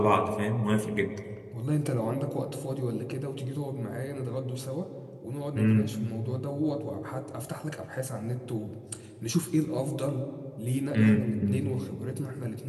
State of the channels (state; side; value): identical; both; correlation 1.00